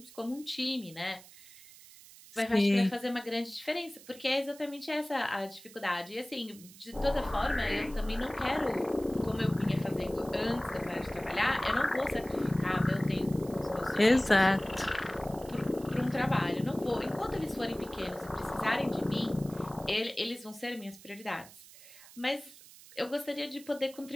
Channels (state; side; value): noise; right; hiss, 20 dB below the sound